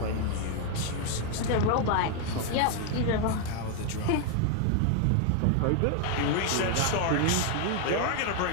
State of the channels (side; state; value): both; different; correlation 0.00